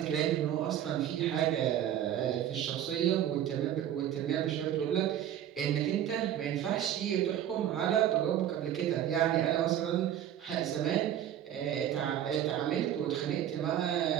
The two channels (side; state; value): left; quieter; 10.9 dB